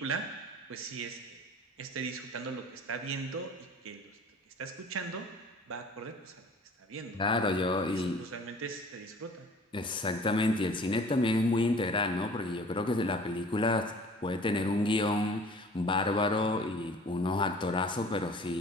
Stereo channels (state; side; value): normal; both; correlation 0.48